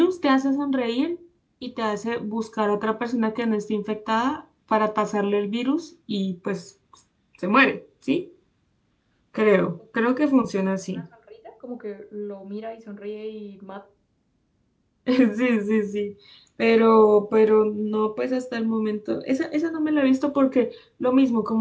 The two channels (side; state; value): both; identical; correlation 1.00